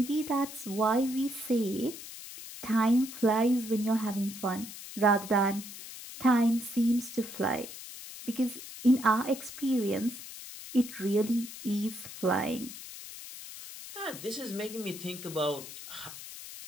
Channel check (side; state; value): left; noise; hiss, 12 dB below the sound